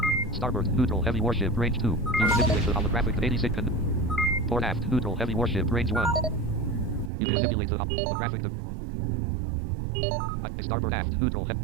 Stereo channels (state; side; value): drops out; left; at 7.1 s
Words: Starboard. Neutral. Heavy warship. Range 2. You manipulate the holographic 86. Port aft. Neutral. Heavy warship. Range 1. You manipulate the holographic... Starboard aft. Neutral.